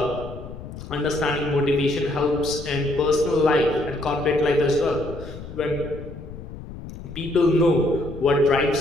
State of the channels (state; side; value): noise; left; rumble, 12 dB below the sound